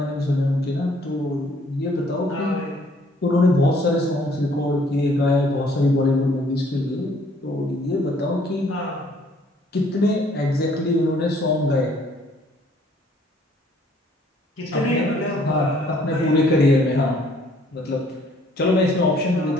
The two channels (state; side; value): normal; both; correlation 0.61